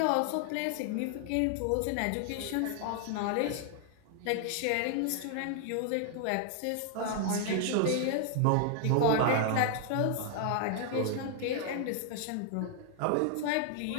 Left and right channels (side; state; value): both; different; correlation 0.00